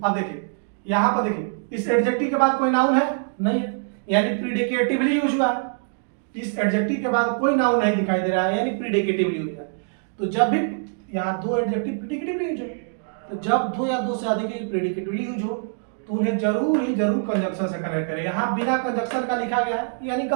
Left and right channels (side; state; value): left; silent; digital silence